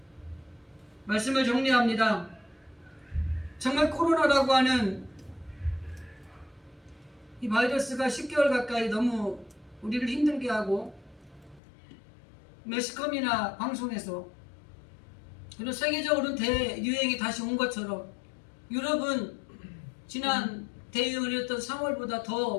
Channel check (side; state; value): right; drops out; at 11.6 s